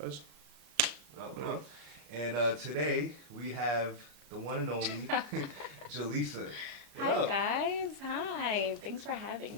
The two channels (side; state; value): left; late; 33 ms